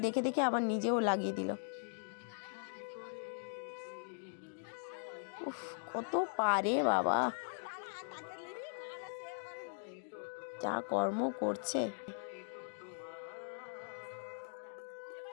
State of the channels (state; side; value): silent; right; digital silence